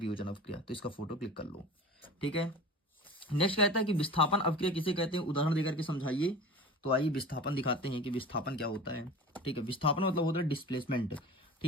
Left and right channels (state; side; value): normal; both; correlation 0.36